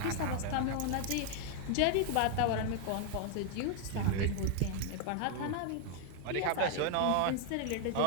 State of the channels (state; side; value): different; both; correlation 0.00